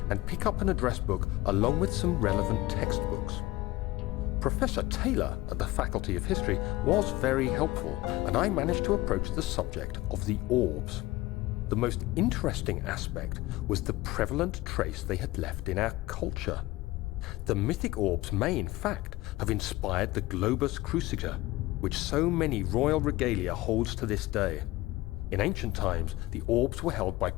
and pick up an address book along with some relevant textbooks. Professor Taylor at the Faculty of History was very helpful, and I managed to approach the subject of the orbs. The most interesting aspect was the prevalent trace they had left in our culture. The mythic orbs may in fact have inspired the globus cruciger, which so many royal regalia holds to this day. In ancient times, the orbs were held by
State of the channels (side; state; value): right; quieter; 18.6 dB